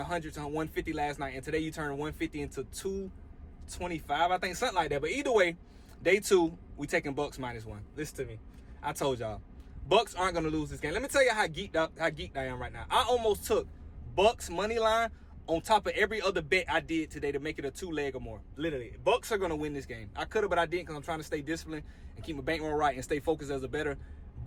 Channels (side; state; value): both; identical; correlation 1.00